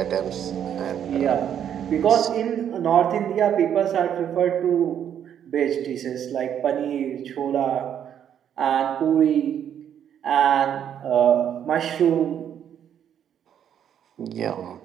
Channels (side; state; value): left; quieter; 9.3 dB